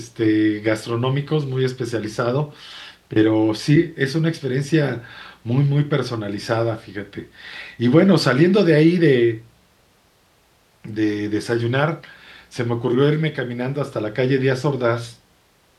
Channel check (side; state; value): both; identical; correlation 1.00